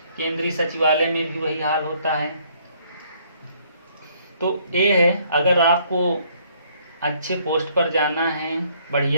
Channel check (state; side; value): inverted; both; correlation -0.65